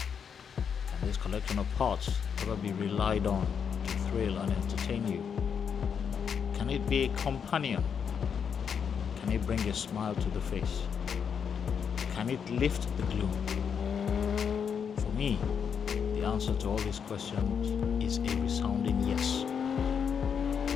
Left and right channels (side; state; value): right; quieter; 7.1 dB